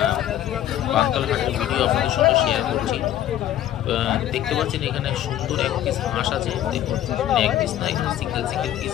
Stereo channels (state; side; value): quieter; right; 12.1 dB